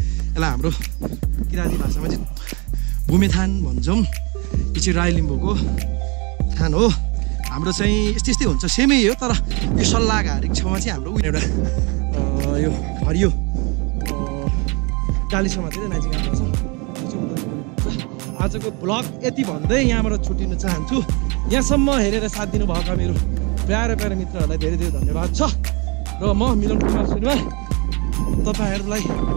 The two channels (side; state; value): left; quieter; 29.9 dB